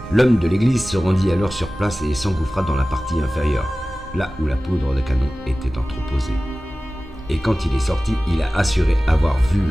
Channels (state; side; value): normal; both; correlation 0.97